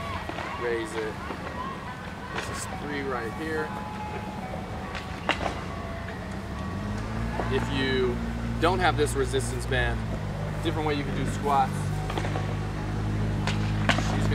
raise it. This is 3 right here. If you don't have this resistance band, different way you can do squats. She's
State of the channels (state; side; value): identical; both; correlation 1.00